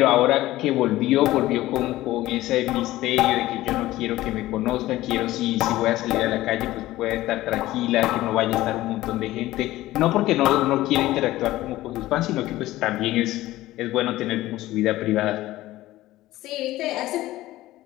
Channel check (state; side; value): quieter; right; 16.4 dB